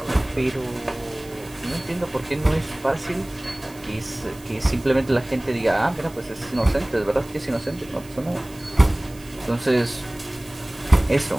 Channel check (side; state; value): right; noise; hiss, 22 dB below the sound